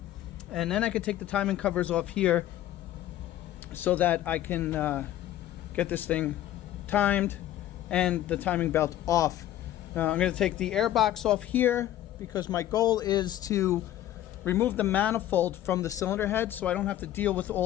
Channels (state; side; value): quieter; right; 13.0 dB